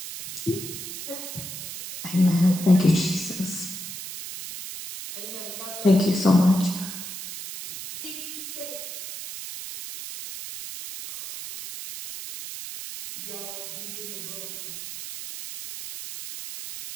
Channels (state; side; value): noise; right; hiss, 9 dB below the sound